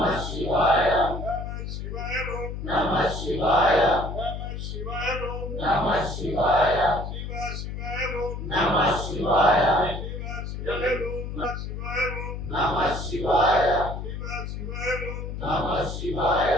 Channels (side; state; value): left; noise; hum, 6 dB below the sound